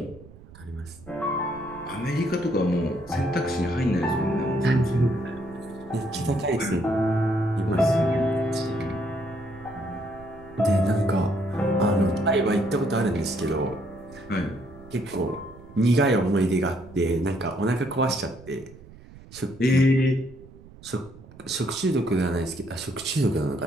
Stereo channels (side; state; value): right; noise; rumble, 20 dB below the sound